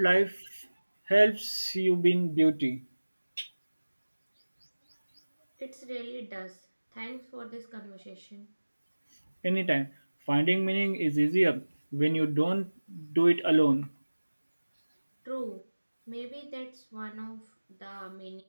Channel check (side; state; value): both; inverted; correlation -1.00